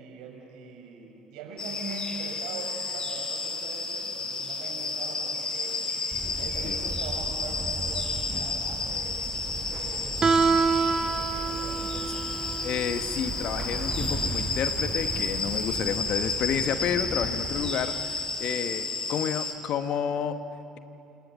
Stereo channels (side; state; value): both; normal; correlation 0.52